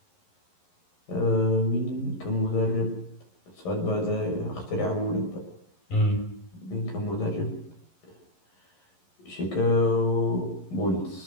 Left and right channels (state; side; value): late; right; 11 ms